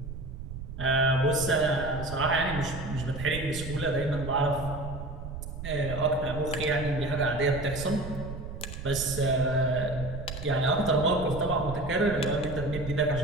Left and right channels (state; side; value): noise; right; rumble, 9 dB below the sound